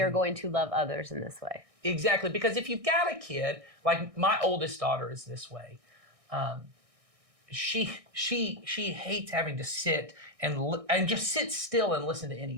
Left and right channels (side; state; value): left; late; 1.6 ms